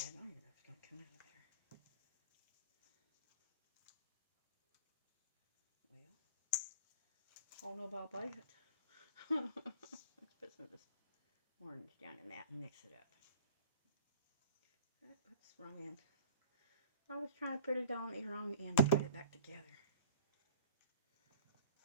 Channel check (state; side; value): inverted; both; correlation -0.44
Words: I don't even know if it's gonna come out of there. Well, I don't know about that. Let's put some of this orange down in that and mix it up. Oops, wrong end. I was trying to put it on the wrong end to put it back together.